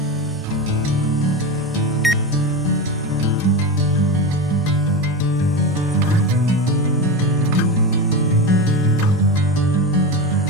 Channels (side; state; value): both; normal; correlation 0.21